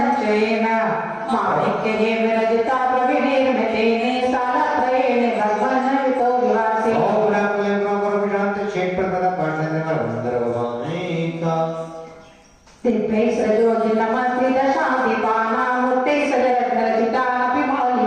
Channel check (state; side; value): identical; both; correlation 1.00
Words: माणिक्येन विरजिता प्रविनिर्मितेन सालत्रयेण भगवन्वितो विवासे दिव्यै सजोजि नमस्ते दशादिपानामूर्ते सजरत्नरचितानपि